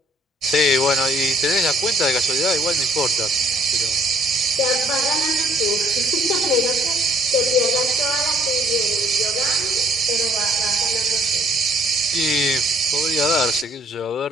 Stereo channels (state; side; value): normal; both; correlation 0.63